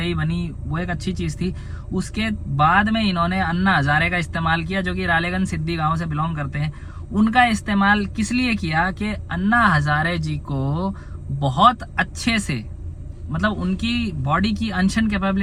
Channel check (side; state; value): both; identical; correlation 1.00